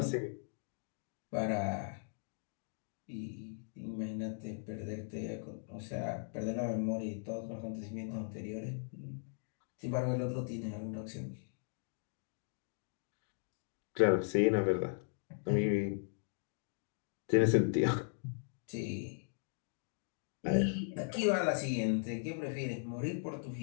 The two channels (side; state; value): right; silent; digital silence